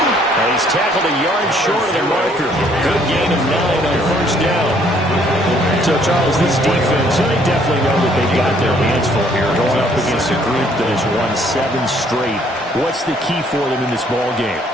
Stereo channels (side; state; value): both; normal; correlation 0.64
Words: And he's tackled a yard short of the marker. Good gain of 9 on 1st down. So, Charles, this defense, they definitely know that they've got their hands full here, going up against a group that has won 7 straight. What's the key for them in this ball game?